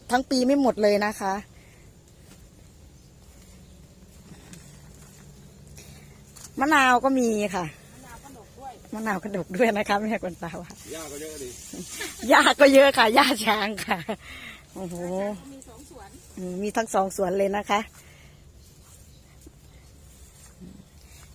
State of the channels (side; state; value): both; identical; correlation 1.00